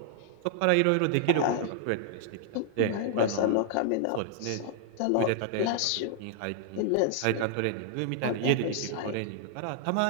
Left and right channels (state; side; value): different; both; correlation -0.01